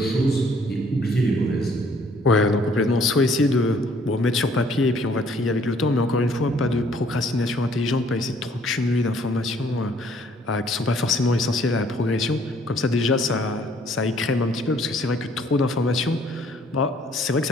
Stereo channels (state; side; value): normal; both; correlation 0.61